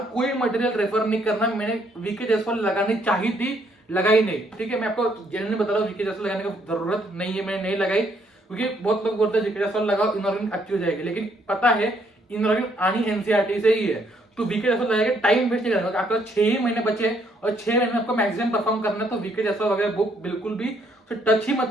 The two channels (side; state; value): both; normal; correlation 0.70